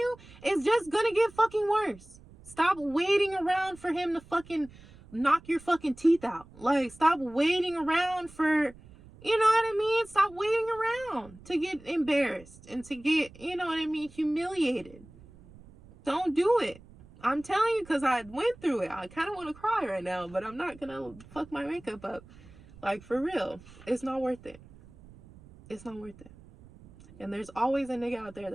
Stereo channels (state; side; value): noise; right; rumble, 22 dB below the sound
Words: it's just gonna get fucking worse. Stop waiting around for him to fucking knock your fucking teeth out. Like, stop waiting around for, you know what I mean? Stop waiting around to get embarrassed and to get, you know what I mean, humiliated. Don't do it. I'm telling you, because I went through it. I kind of want to cry right now, but I'm not going to fuck my makeup up. Like, for real. It's not worth it. It's not worth it. And there's always a nigga out there